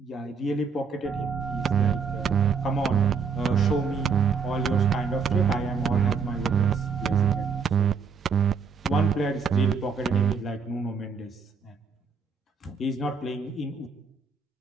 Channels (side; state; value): left; quieter; 5.6 dB